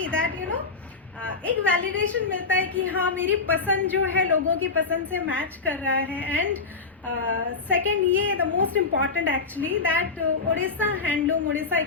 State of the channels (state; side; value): quieter; right; 4.4 dB